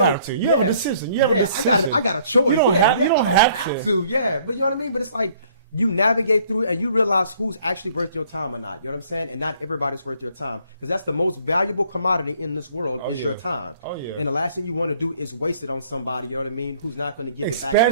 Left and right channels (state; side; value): inverted; both; correlation -0.60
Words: to. You have a decision. You have a decision. I got a choice. You don't have to. Yeah, but you know what I mean. But it's like, you navigate through it and you realize who's actually worth your time or not. You know what I'm saying? And not everybody's worth your time, because that's the most valuable commodity in this world is your time. Oh yeah. And the last thing you want to do is waste it on somebody. You know what I mean? Who's not going to give it